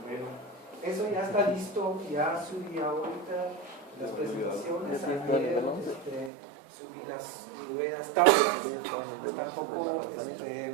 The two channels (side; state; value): left; drops out; at 6.3 s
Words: Bueno, eso ya está listo, ya subí ahorita las presentaciones, ayer subí las nuevas tablas, tampoco